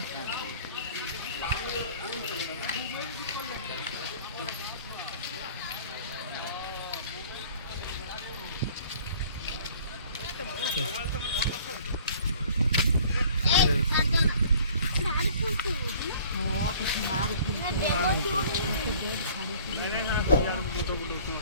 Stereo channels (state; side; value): inverted; both; correlation -0.52